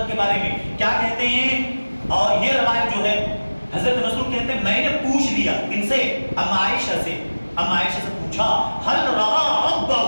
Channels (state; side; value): inverted; both; correlation -1.00